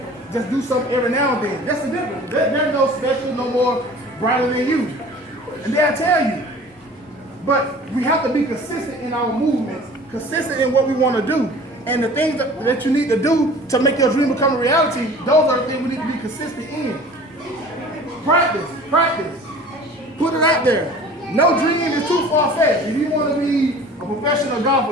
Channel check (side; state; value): both; normal; correlation 0.44